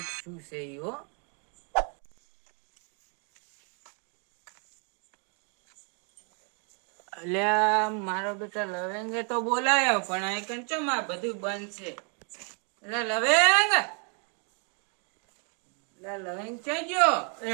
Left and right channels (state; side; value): quieter; left; 38.9 dB